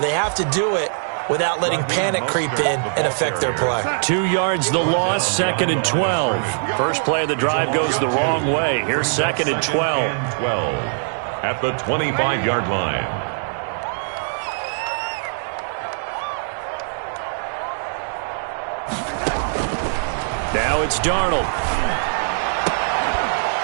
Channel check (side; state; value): left; silent; digital silence